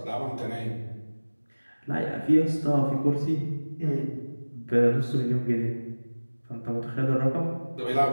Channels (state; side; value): inverted; both; correlation -1.00